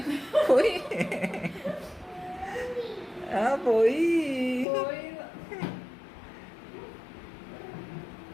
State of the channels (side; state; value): right; drops out; at 4.7 s